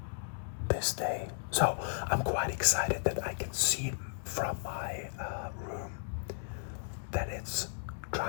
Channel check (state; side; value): silent; right; 55 dB below the other